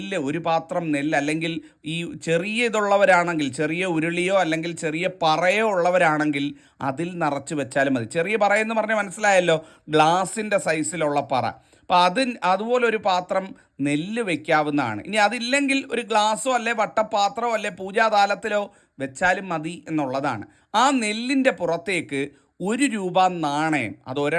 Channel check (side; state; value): both; identical; correlation 1.00